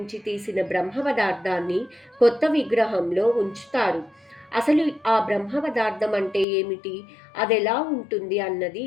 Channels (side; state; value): right; drops out; at 6.5 s